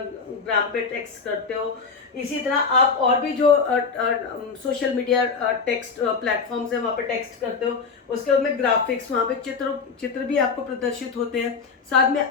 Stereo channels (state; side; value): quieter; right; 5.1 dB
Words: पे टेक्स्ट करते हो, इसी तरह आप और भी जो सोशल मीडिया टेक्स्ट प्लेटफॉर्म्स है वहाँ पे टेक्स्ट करते हो, उसके बाद में ग्राफिक्स, वहाँ पे चित्र भी आपको प्रदर्शित होते हैं, साथ में